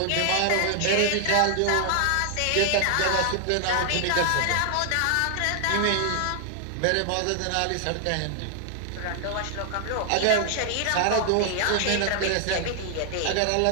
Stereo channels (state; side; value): different; both; correlation 0.00